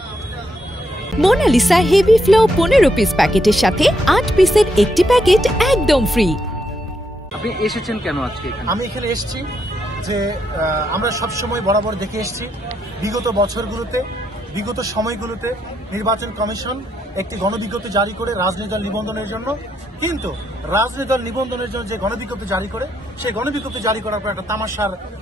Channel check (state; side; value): normal; both; correlation 0.78